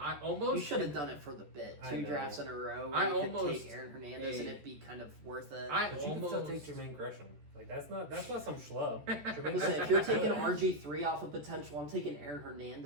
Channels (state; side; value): late; left; 14 ms